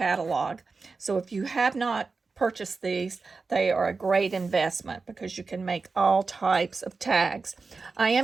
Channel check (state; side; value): quieter; left; 4.3 dB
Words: So if you have not purchased these, they are a great investment because you can make all types of tags. I